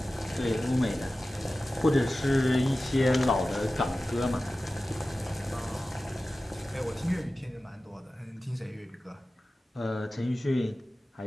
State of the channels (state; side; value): normal; both; correlation 0.95